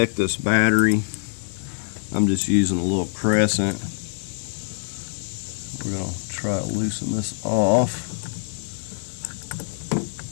this battery. I'm just using a little crescent. We're going to try to loosen this off.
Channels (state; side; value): silent; right; 62 dB below the other